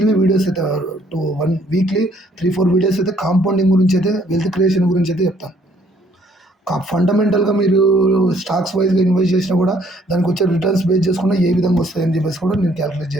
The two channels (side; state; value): both; normal; correlation 0.64